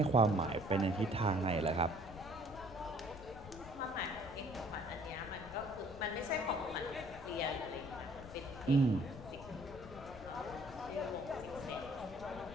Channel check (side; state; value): left; noise; rumble, 15 dB below the sound